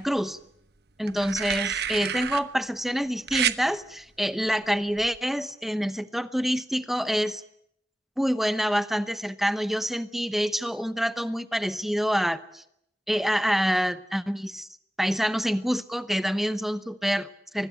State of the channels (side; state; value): both; normal; correlation 0.92